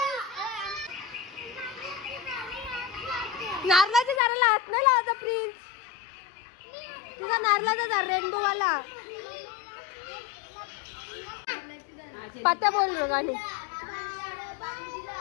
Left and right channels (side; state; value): right; drops out; at 4.2 s